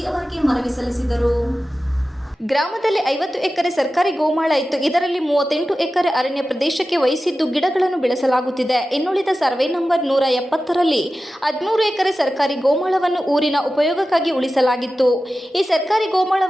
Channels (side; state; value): both; normal; correlation 0.94